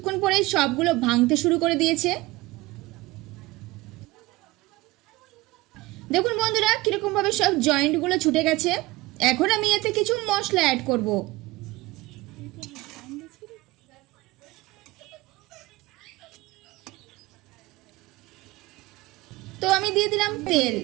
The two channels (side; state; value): left; quieter; 20.2 dB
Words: পরে সবগুলো ভাঙতে শুরু করে দিয়েছে। দেখুন বন্ধুরা কিরকম ভাবে সব জয়েন্টগুলো ছুটে গেছে। এখন আমি এতে কিছু মশলা অ্যাড করব। তো আমি দিয়ে দিলাম তেল,